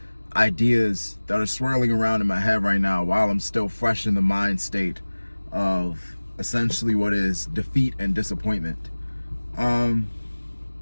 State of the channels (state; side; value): inverted; both; correlation -1.00